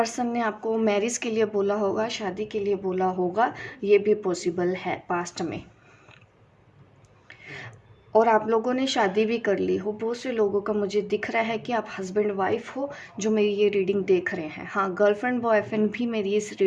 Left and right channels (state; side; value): identical; both; correlation 1.00